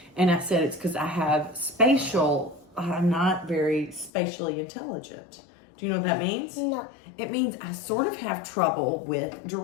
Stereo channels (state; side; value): drops out; right; at 4.1 s